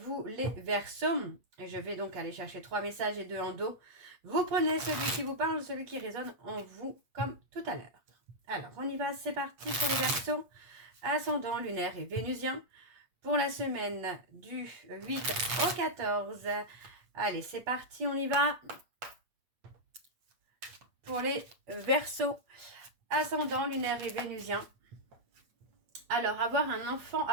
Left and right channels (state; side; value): late; left; 8.6 ms